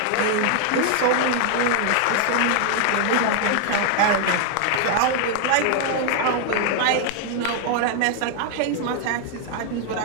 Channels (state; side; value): different; both; correlation 0.00